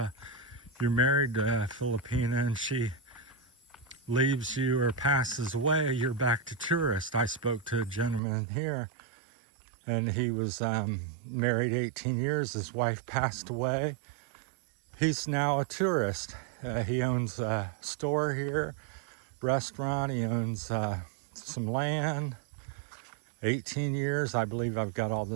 you're married to a Filipina and she leaves you or passes away, you're back to tourist. I spoke to a gentleman here, and he was married 18 years. His wife passed away. He's now a tourist. He owns a store here, restaurant. He owns some land. 18 years, I believe I've got all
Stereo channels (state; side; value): drops out; left; at 8.2 s